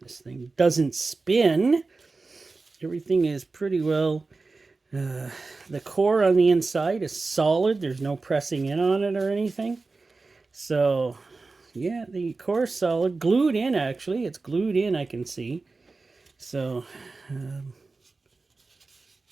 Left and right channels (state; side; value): quieter; left; 3.8 dB